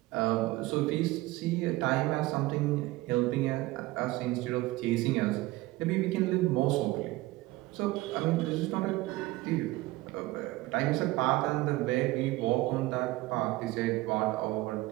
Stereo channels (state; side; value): quieter; left; 19.2 dB